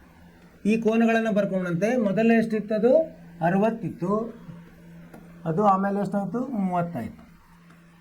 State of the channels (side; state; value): both; identical; correlation 1.00